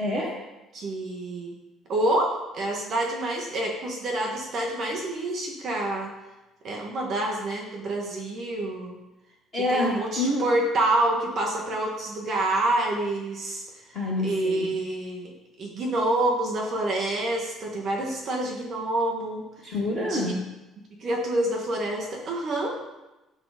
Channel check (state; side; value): normal; both; correlation 0.59